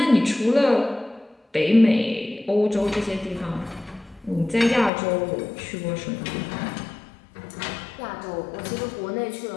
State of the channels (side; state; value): right; drops out; at 4.9 s